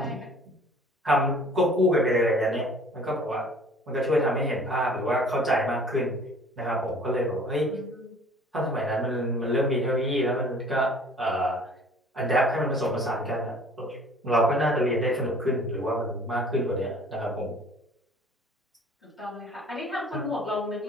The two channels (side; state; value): both; normal; correlation 0.50